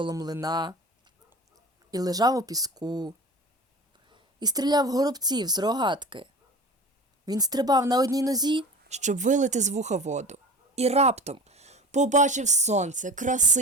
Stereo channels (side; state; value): both; normal; correlation 0.35